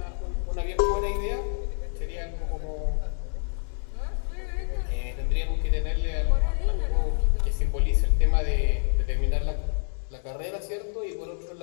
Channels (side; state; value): right; silent; 55 dB below the other